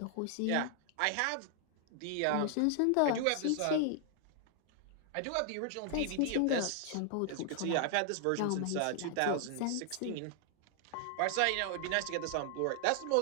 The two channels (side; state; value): both; different; correlation 0.00